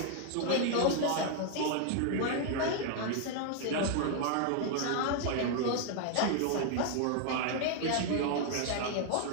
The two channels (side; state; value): both; different; correlation 0.00